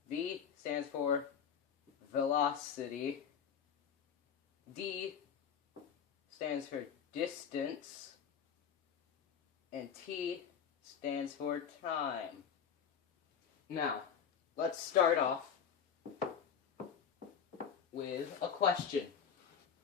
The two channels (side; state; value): right; quieter; 7.6 dB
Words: V stands for velocity. D stands for distance. And T stands for time. Now, let's start off with a question.